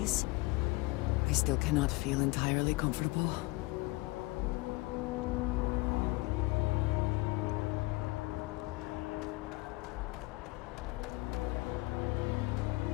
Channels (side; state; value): right; quieter; 23.0 dB